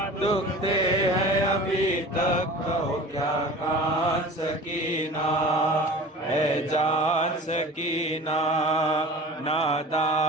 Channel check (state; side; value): normal; both; correlation 0.39